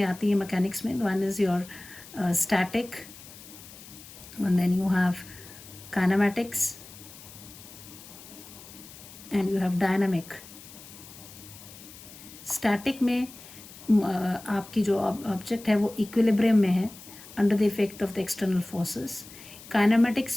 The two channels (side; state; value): left; noise; hiss, 18 dB below the sound